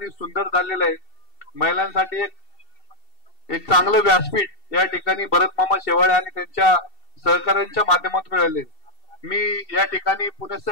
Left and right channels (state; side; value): late; right; 2.7 ms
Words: सुंदर झालेला आहे। महिलांसाठी एक चांगलं व्यासपीठ या ठिकाणी भरत मामा शेवाळे आणि त्यांच्या सहकार्यांच्या माध्यमातून मिळाले। मी या ठिकाणी